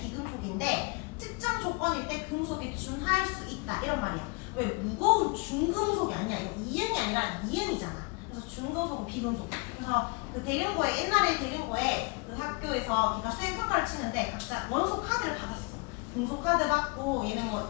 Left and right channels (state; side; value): quieter; right; 30.0 dB